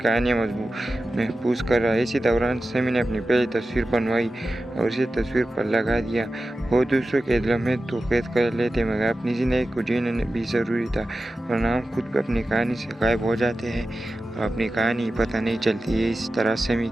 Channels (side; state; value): both; normal; correlation 0.93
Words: महफूज कर रहा है। इसी दौरान समी ने अपनी पहली तस्वीर बनवाई और इसे तस्वीर पर लगा दिया। वो दूसरों के लम्हे तो कैद कर लेते मगर अपनी ज़िंदगी को जीना भी ज़रूरी था, वरना हम खुद भी अपनी कहानी से गायब हो जाते हैं और अपनी कहानी पता नहीं चलती है। इस तरह समी